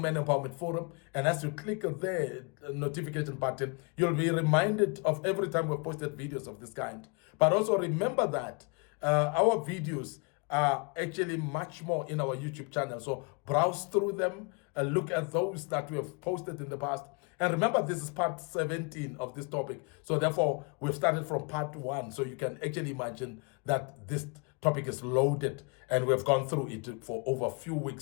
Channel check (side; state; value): right; quieter; 33.5 dB